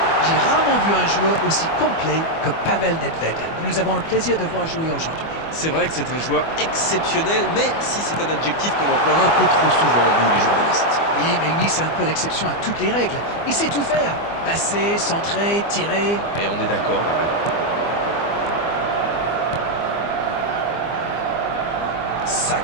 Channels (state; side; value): late; right; 24 ms